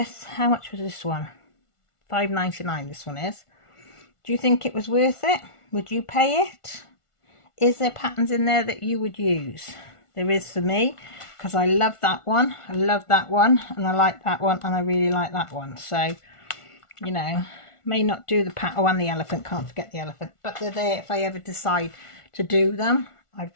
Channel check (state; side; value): late; right; 1.4 ms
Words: how much was this one? $5.99 this one is. Do you think it was worth it? Would you pay it? Is there patterns in there that you would use? There is for me, because I love that one. I love that one, and I like that one, and I really like that one. So, you know, may not do the pattern. Oh, and the elephant, can't forget the elephant. But they're there if I ever decide to do them. I've